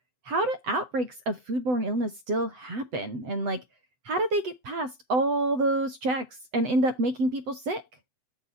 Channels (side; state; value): left; late; 7.9 ms